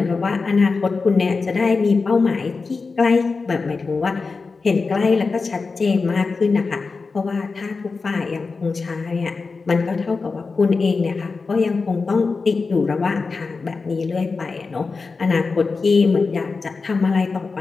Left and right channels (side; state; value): right; quieter; 4.3 dB